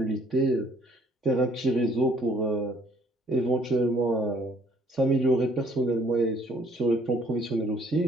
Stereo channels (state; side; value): normal; both; correlation 0.61